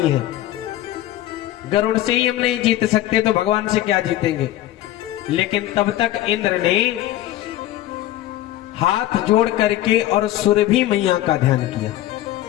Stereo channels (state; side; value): quieter; right; 14.1 dB